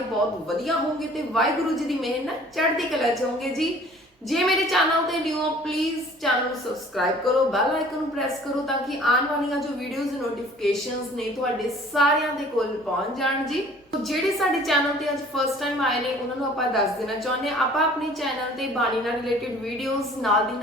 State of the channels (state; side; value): normal; both; correlation 0.51